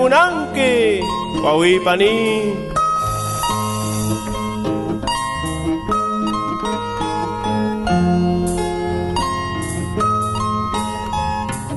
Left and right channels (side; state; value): both; identical; correlation 1.00